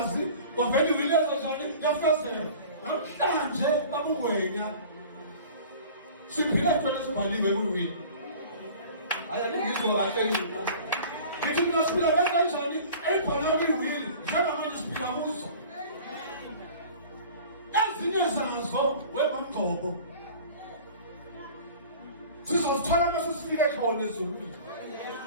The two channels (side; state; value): both; inverted; correlation -0.43